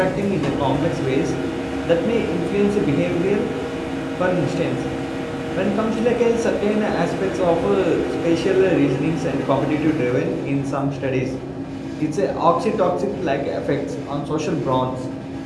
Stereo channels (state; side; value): identical; both; correlation 1.00